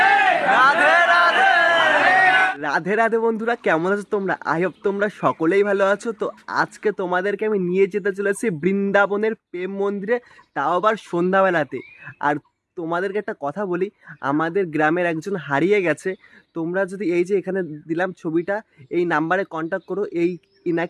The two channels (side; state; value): both; identical; correlation 1.00